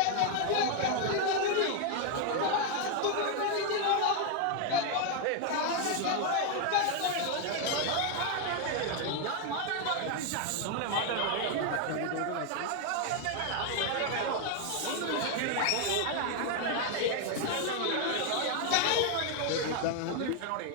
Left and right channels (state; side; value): different; both; correlation 0.01